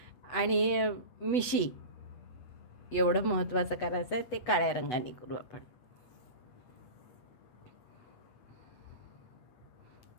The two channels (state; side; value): late; right; 8.1 ms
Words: आणि मिशी एवढं महत्त्वाचं करायचं आहे, ते काळ्या रंगाने करू आपण.